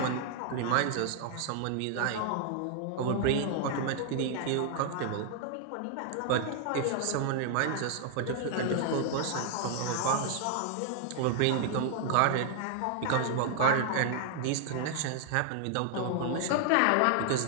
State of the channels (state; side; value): different; both; correlation -0.01